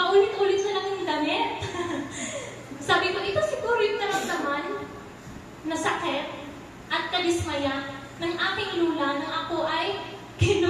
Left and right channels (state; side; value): identical; both; correlation 1.00